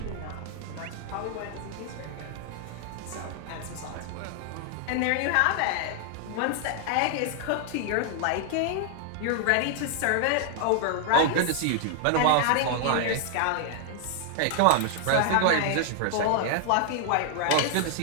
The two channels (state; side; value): different; both; correlation 0.00